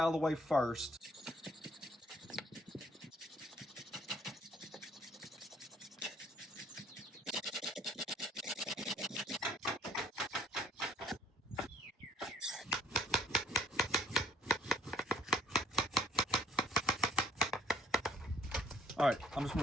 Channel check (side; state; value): both; normal; correlation 0.61